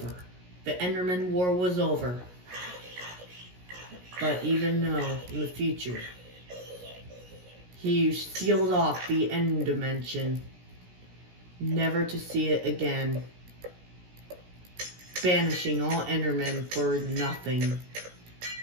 The Enderman War was over. But even though in the future he sealed off the end dimension, never to see it again, banishing all Endermen for nothing,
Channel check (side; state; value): left; late; 17 ms